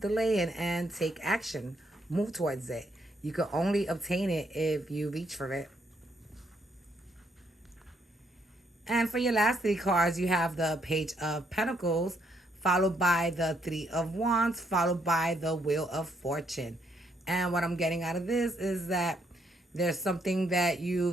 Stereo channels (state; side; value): normal; both; correlation 0.73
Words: delaying and take action. Move towards it. You can only obtain it if you reach for it. And for your last three cards, you have the Page of Pentacles, followed by the Three of Wands, followed by the Wheel of Fortune. And what I'm getting out of this is that there's something that